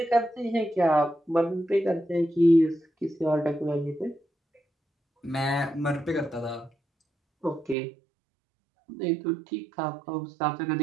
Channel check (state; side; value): drops out; left; at 7.8 s